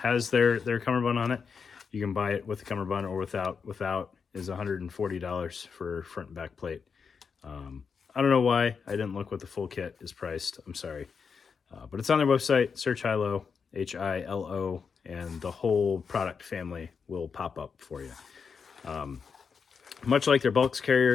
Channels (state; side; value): quieter; right; 5.9 dB